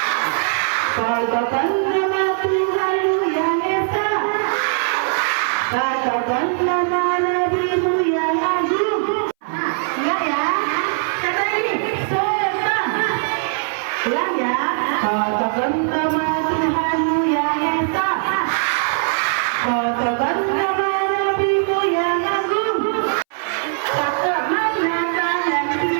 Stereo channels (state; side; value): silent; left; 63 dB below the other